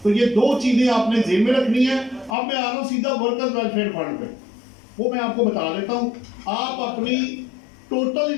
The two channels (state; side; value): drops out; right; at 2.4 s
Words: तो ये दो चीजें आपने जेब में रखनी है। अब मैं आ रहा हूं सीधा वर्कर्स वेलफेयर फंड पे, वो मैं आपको बता देता हूं। आप अपनी टोटल